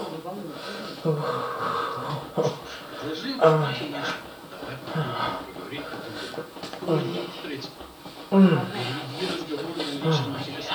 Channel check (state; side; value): identical; both; correlation 1.00